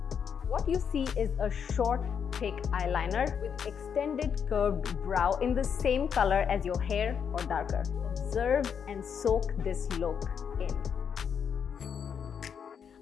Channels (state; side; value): quieter; right; 7.3 dB